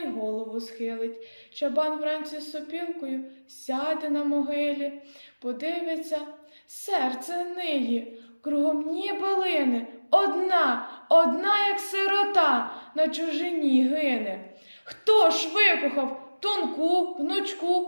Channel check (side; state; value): both; inverted; correlation -1.00